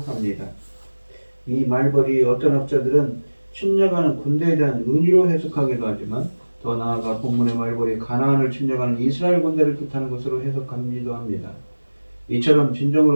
합니다. 이 말벌이 어떤 학자들은 침략하는 군대에 대한 은유로 해석하기도 하지만 더 나아가 본문의 말벌이 가나안을 침략하는 이스라엘 군대를 뜻하는 것으로 해석하기도 합니다. 이처럼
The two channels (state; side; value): inverted; both; correlation -1.00